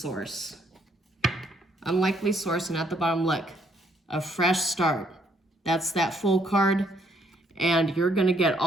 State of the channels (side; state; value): both; normal; correlation 0.69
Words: Unlikely source, and at the bottom, look, a fresh start. That's that full card, and you're going to get